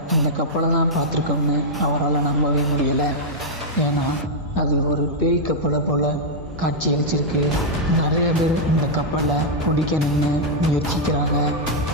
அந்த கப்பலை தான் பார்த்துருக்கோம்னு அவரால் நம்பவே முடியலை. ஏன்னா அது ஒரு பேய் கப்பலை போல் காட்சி அளிச்சிருக்கு. நிறைய பேர் இந்த கப்பலை பிடிக்கணும்னு முயற்சிக்கிறாங்க,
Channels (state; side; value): normal; both; correlation -0.05